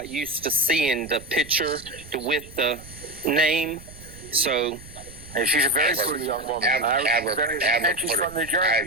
used to seeing the picture with the name. So And she's a very pretty young woman. And she's from New Jersey.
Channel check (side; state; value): right; noise; rumble, 18 dB below the sound